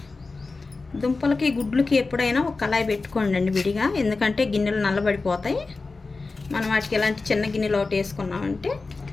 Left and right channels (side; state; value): right; quieter; 3.8 dB